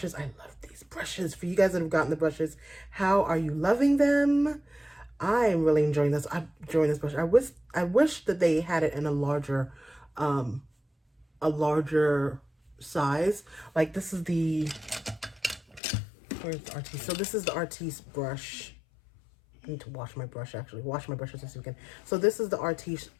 I love these brushes. For you guys that have gotten the brushes, how are you loving them? I am really enjoying this. I'm enjoying this brush. I wish that they had it in a larger size. Like this is the, where's the Artiste? So this is the Artiste brush. I need to wash my brush, actually. Wash my brushes this weekend. So this is the Artiste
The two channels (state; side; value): drops out; right; at 15.8 s